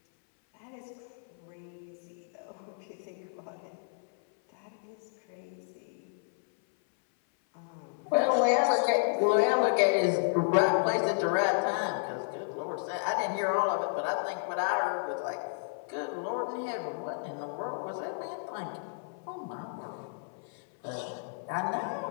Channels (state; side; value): silent; right; 57 dB below the other